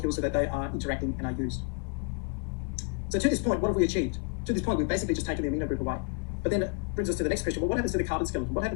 so that they are interacting and are used. So to this point, what have we achieved? To this point, we've basically just taken the amino group away. But then it brings us to the next question. Well, what happens to the carbon skeleton? What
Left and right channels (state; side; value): quieter; right; 34.7 dB